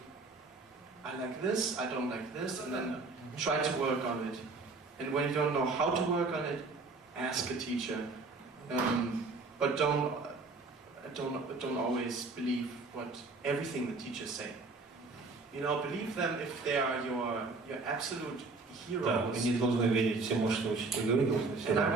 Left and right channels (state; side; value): quieter; left; 3.8 dB